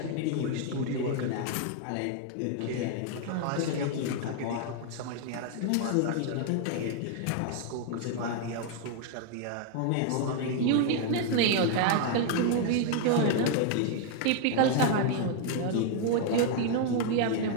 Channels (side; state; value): both; different; correlation 0.00